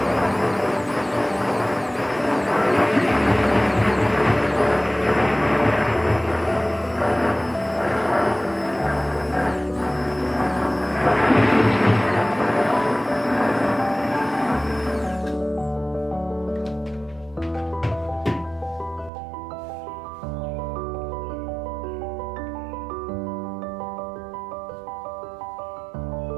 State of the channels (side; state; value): left; drops out; at 19.1 s